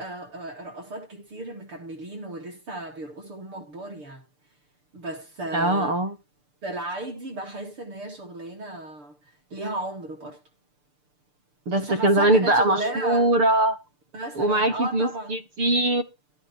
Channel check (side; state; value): left; late; 6.8 ms